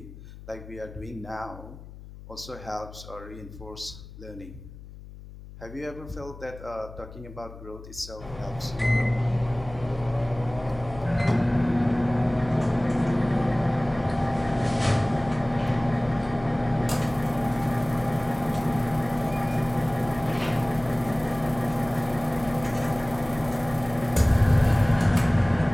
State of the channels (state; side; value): noise; left; hum, 16 dB below the sound